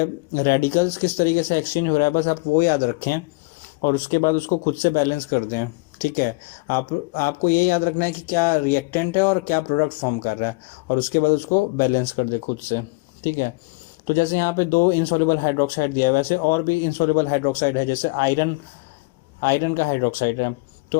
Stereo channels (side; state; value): right; quieter; 26.6 dB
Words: रेडिकल्स किस तरीके से एक्सचेंज हो रहा है, बस आप वो याद रखें और उसके बाद उसको खुद से बैलेंस कर दें। ठीक है, आपको ये याद रखना है कि क्या रिएक्टेंट है और क्या प्रोडक्ट फॉर्म कर रहा है, और उसके बाद उसको बैलेंस कर दे खुद से। ठीक है, तो जैसे यहाँ पे 2 इनसॉल्युबल हाइड्रोक्साइड दिया है, वैसे और भी इनसॉल्युबल हाइड्रोक्साइड है, जैसे आयरन का हाइड्रोक्साइड है। तो